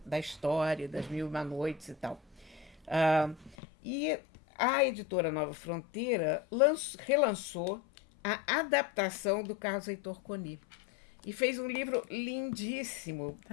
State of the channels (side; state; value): right; drops out; at 3.6 s